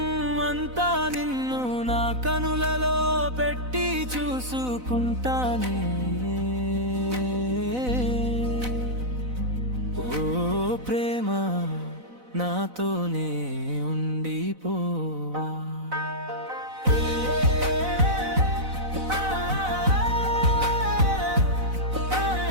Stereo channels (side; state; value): left; late; 4.0 ms